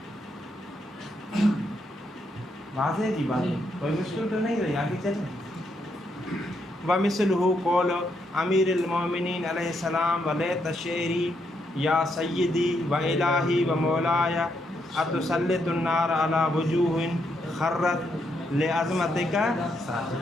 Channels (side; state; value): both; normal; correlation 0.78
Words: واضح جی بات، کوئی مشکل تو نہیں رہی، آگے چلیں. ومثلہ قول امیر المومنین علیہ السلام ولیت شعری یا سیدی و الہی و مولایا اتسلط النار علی وجوہ خرت لعظمتک